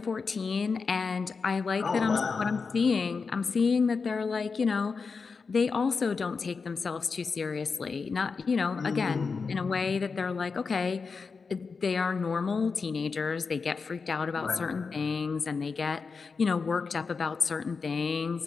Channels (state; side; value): quieter; right; 4.9 dB